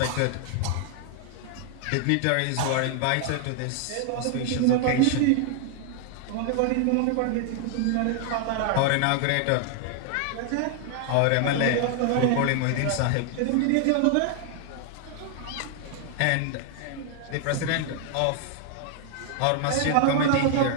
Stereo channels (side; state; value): both; different; correlation 0.00